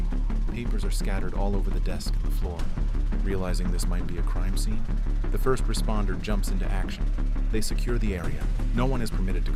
Papers are scattered all over the desk and the floor. Realizing this might be a crime scene, the first responder jumps into action. They secure the area. No one is permitted to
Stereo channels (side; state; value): both; identical; correlation 1.00